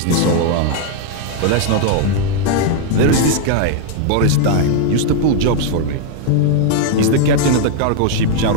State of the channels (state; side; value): different; both; correlation 0.00